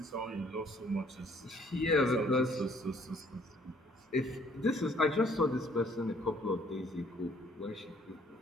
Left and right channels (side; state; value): both; normal; correlation 0.61